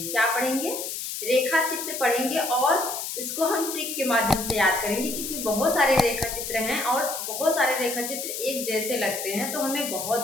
क्या पढ़ेंगे? रेखा चित्र पढ़ेंगे और इसको हम ट्रिक के माध्यम से याद करेंगे, क्योंकि बहुत सारे रेखा चित्र हैं और बहुत सारे रेखा चित्र एक जैसे लगते हैं तो हमें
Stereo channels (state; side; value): noise; left; hiss, 5 dB below the sound